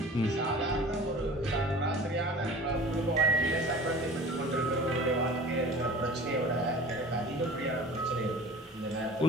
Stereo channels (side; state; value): both; normal; correlation 0.42